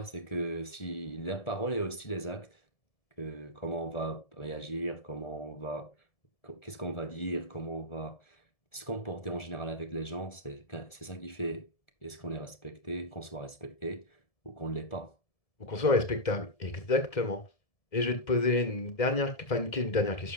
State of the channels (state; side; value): late; right; 1.4 ms